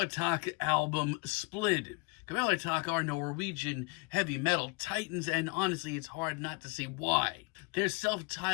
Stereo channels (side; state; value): right; quieter; 29.1 dB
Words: album, Splid. Kvelertak are Norwegian heavy metal titans, and honestly, it's hard not to see why. Their